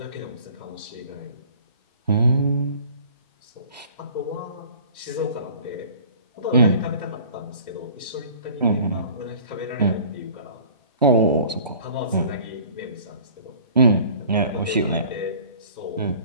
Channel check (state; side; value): inverted; both; correlation -0.48